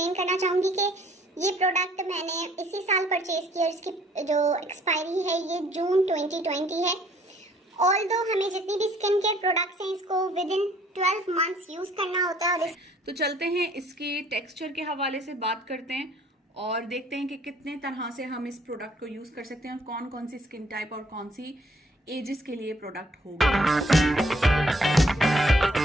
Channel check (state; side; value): normal; both; correlation 0.61